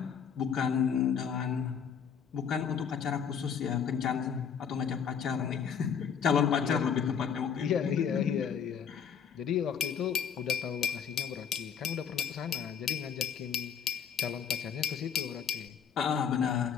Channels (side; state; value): right; quieter; 7.3 dB